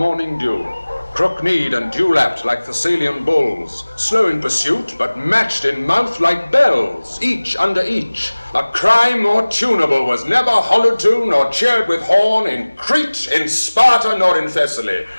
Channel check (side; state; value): both; inverted; correlation -1.00